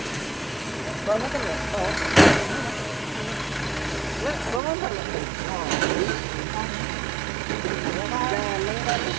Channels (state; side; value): drops out; left; at 4.6 s